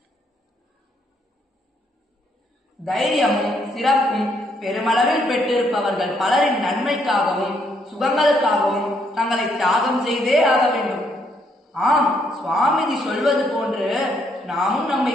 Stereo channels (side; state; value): both; normal; correlation 0.72